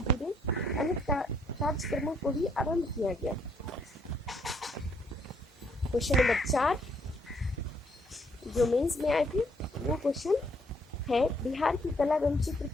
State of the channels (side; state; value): both; normal; correlation 0.69